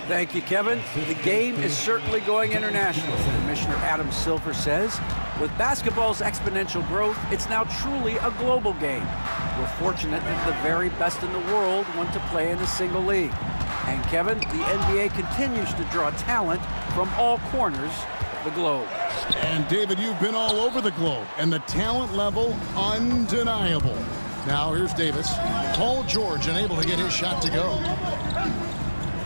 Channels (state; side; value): inverted; both; correlation -1.00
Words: Thank you, Kevin. The game is certainly going international. Commissioner Adam Silver says, with basketball's exponential growth, it's now truly a global game. We're fortunate that the very best in the world want to play in a single league. And Kevin, the NBA continues to draw talent from all corners of the globe. And David, you've been all over the globe, and the talent level undeniable. Now here's Davis. Paul George unable to get his shot to go.